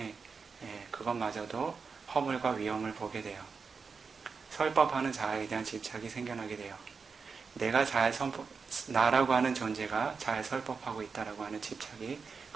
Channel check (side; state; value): left; quieter; 5.2 dB